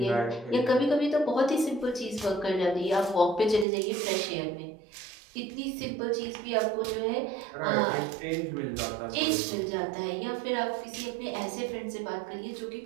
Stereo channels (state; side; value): drops out; left; at 3.7 s